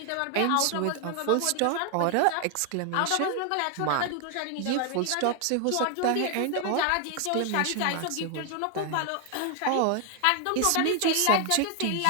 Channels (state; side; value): different; both; correlation 0.00